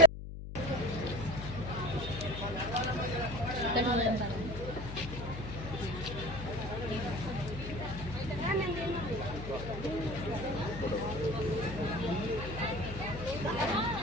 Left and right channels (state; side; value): noise; left; hum, 9 dB below the sound